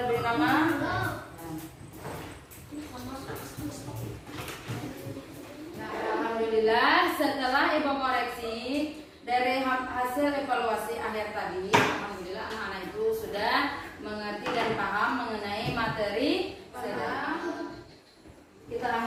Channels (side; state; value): both; identical; correlation 1.00